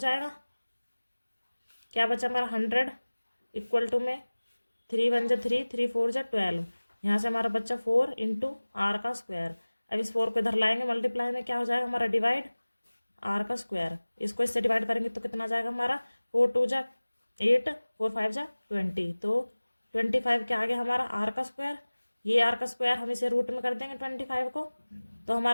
क्या बचा हमारा 100 इक्वल टू में 3 1 जा 3, 3 4 जा 12, यहाँ से हमारा बच्चा 4 इंटू आर का स्क्वायर। अब इस 4 को इधर लाएंगे, मल्टीप्लाई में क्या हो जाएगा हमारा डिवाइड आर का स्क्वायर, इसको इससे डिवाइड करेंगे तो कितना जाएगा हमारा 4 2 जा 8, 4 5 जा 20, तो 25 क्या आ गया हमारा आर का स्क्वायर। ये आर का स्क्वायर हम इसे रूट में कर देंगे 25 को, तो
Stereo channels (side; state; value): both; inverted; correlation -1.00